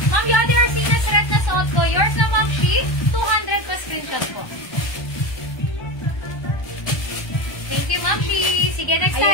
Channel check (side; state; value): right; late; 1.2 ms